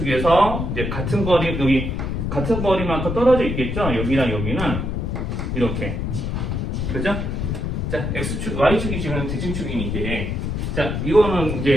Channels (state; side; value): noise; left; rumble, 2 dB below the sound